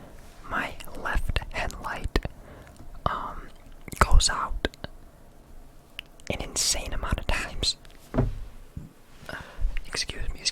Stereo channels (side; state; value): both; identical; correlation 1.00